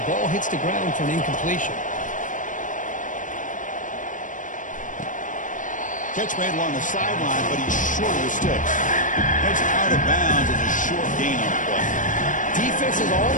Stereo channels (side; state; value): right; late; 0.37 ms